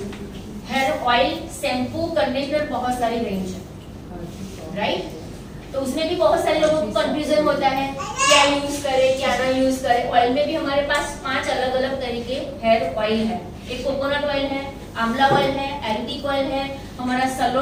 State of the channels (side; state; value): both; identical; correlation 1.00